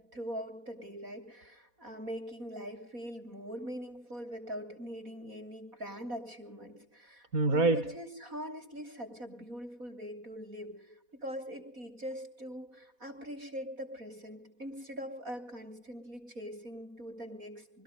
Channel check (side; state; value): left; late; 4.1 ms